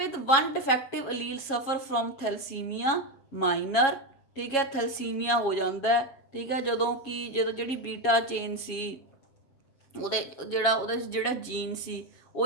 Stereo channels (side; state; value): right; late; 7.4 ms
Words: one defective allele suffer from thalassemia minor। ठीक है, ਥੈਲਸੀਮੀਆ ਹੋ ਜਾਂਦਾ ਹੈ। ਠੀਕ ਹੈ, ਜਦੋਂ ਜਿਹੜੀ ਬੀਟਾ ਚੇਨ ਸੀ ਉਹਦੇ ਜਿਹੜਾ ਜੀਨ ਸੀ